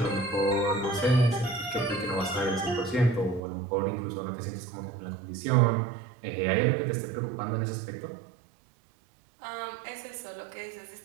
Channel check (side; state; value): left; drops out; at 3.4 s